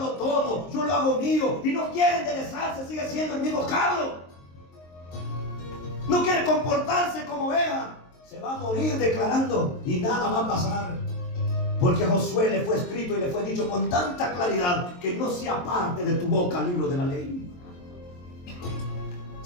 tomo, yo lo hago mío, y no quiere enderezarse, sigue siendo el mismo cabro, no quiere comportarse como vea, se va a morir declarando y nada va a pasar? Porque a Josué le fue escrito y le fue dicho con tanta claridad que no se aparte de tu boca el libro de la ley.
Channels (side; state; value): right; late; 23 ms